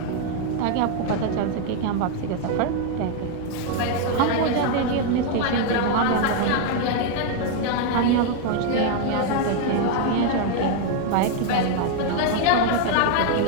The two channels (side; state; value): both; different; correlation 0.00